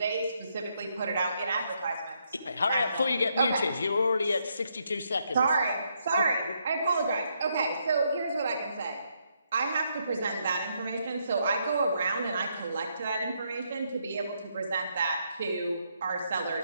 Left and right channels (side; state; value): both; inverted; correlation -0.76